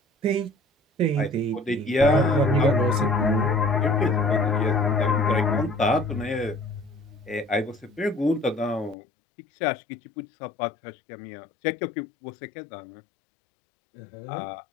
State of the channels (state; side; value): drops out; right; at 9.0 s